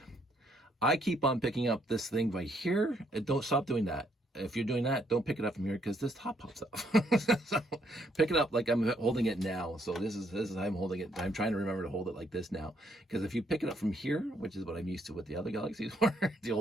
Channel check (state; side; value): normal; both; correlation 0.71